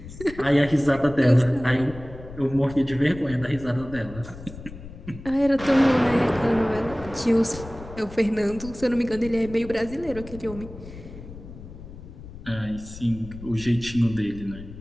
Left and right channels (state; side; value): noise; left; rumble, 15 dB below the sound